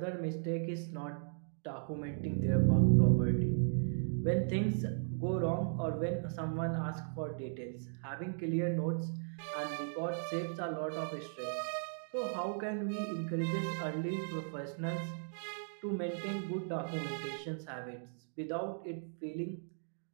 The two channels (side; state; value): left; silent; digital silence